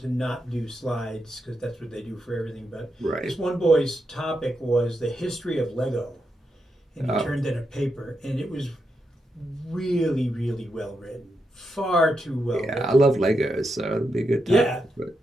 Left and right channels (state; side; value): normal; both; correlation 0.85